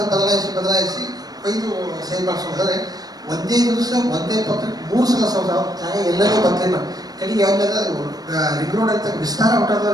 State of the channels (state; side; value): late; left; 0.19 ms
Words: ಒಯ್ದು ಸಹಿ ಮಾಡಿಸೋದಾದ್ರೆ ಒಂದೇ ದಿವಸ ಒಂದೇ ಪತ್ರಕ್ಕೆ 3 ಸಲ ಜಾಗ ಎಲ್ಲರೂ ಬಂದಿಲ್ಲ. ಕಡೆಗೆ ಯಾವ್ದಾದ ರಿಂಗ್ ರೋಡ್ ಅಂತ ವಿಸ್ತಾರ ಹೊಟ್ಟದ